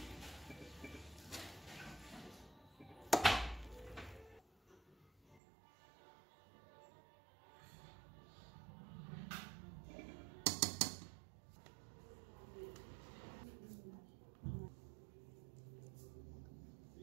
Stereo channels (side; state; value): left; drops out; at 5.4 s